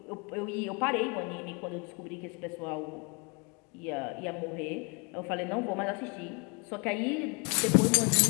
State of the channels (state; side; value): quieter; right; 32.6 dB